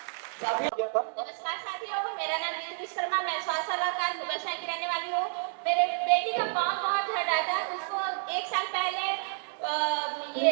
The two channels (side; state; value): left; silent; digital silence